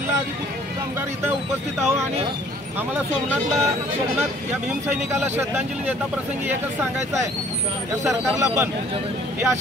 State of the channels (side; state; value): both; normal; correlation 0.56